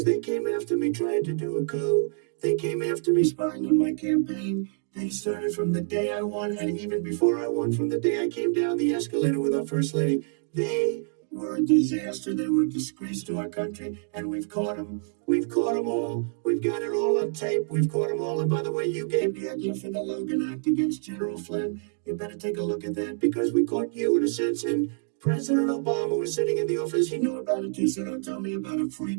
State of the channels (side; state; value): left; silent; 60 dB below the other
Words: they came after me trying to do a coup. They came after me spying on my campaign. They started from the day I won, and even before I won, from the day I came down the escalator with our First Lady. They were a disaster. They were a disgrace to our country, and we've caught them. We've caught them all. We've got it all on tape. We've caught them all. And by the way, you gave the idea for the Logan Act against General Flynn. You better take a look at that, because we caught you in a sense, and President Obama was sitting in the office. He knew about it too, so don't tell me about a free